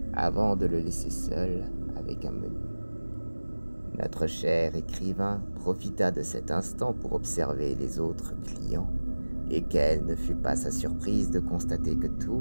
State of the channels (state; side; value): inverted; both; correlation -1.00